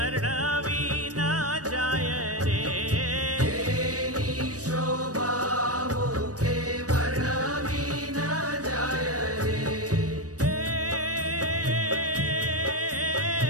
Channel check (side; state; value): left; late; 0.67 ms